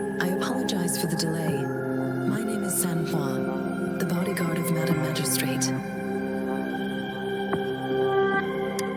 I apologize for the delay. My name is Sanhua, the bodyguard of Madam Magistrate.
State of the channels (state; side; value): identical; both; correlation 1.00